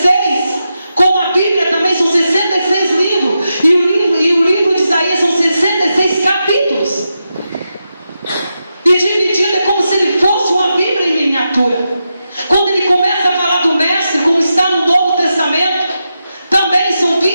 como a Bíblia também são 66 livros, e o livro de Isaías são 66 capítulos. E dividido é como se ele fosse uma Bíblia em miniatura. Quando ele começa a falar do Mestre, como está no Novo Testamento, também são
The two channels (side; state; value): both; inverted; correlation -0.88